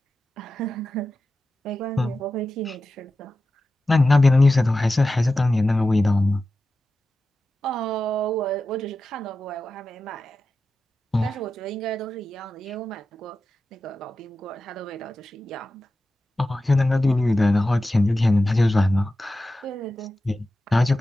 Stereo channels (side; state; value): both; normal; correlation 0.92